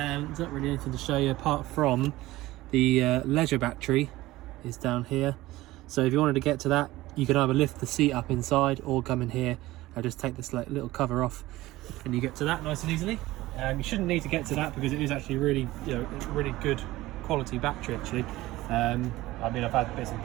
there's not really anything to show you apart from the leisure battery is down here. So if you wanted to get to that, you can either lift the seat up inside or come in here and just take this little cover off, and you get to that nice and easily. You shouldn't need to get to that because it is actually really, really good quality battery actually. I mean, I've had bits and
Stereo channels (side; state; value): left; quieter; 17.6 dB